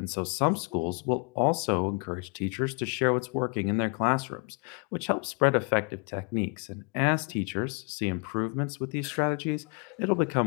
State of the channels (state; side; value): quieter; right; 35.4 dB